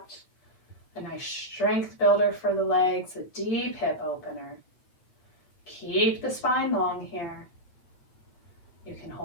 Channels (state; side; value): late; right; 8.5 ms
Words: A nice strength builder for the legs, a deep hip opener. Keep the spine long here. You can